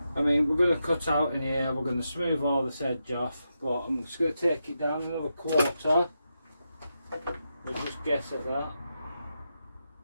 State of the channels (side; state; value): both; inverted; correlation -0.86